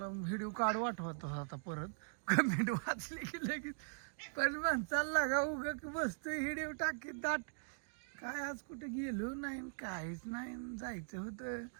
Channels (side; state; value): left; silent; digital silence